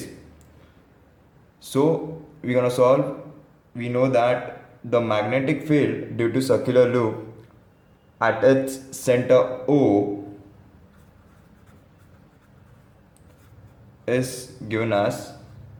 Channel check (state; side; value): identical; both; correlation 1.00